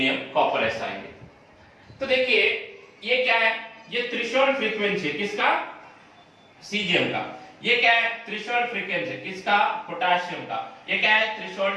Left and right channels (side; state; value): both; identical; correlation 1.00